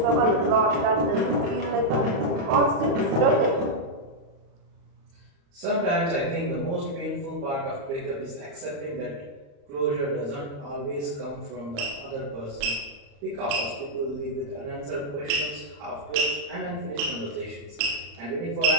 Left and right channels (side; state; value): left; late; 35 ms